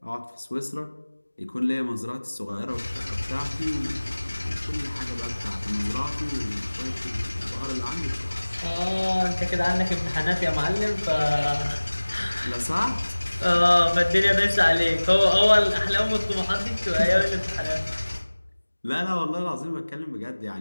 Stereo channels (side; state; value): both; inverted; correlation -1.00